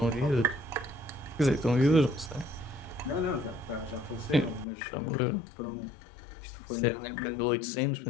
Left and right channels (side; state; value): right; drops out; at 4.7 s